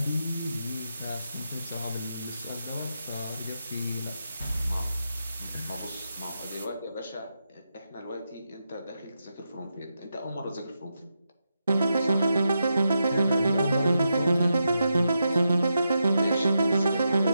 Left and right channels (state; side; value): inverted; both; correlation -0.86